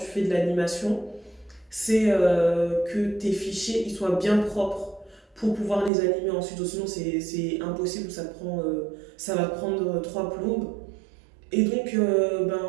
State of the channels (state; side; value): drops out; left; at 5.9 s